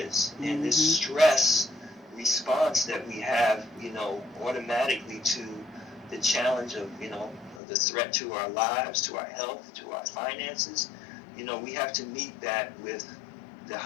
And this stress response that we have, automatically to the challenge of, the threat to our lives, to our health, to our finances, we have to meet that with the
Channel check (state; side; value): drops out; right; at 7.6 s